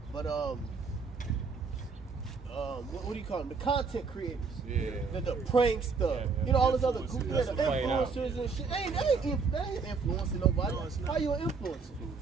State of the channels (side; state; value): left; quieter; 4.9 dB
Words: But what do you call them? The content creators. Yeah. The pranks, all this other group, the playing out. influencers and shit. That ain't influencing nobody. No, it's not. How you an influencer?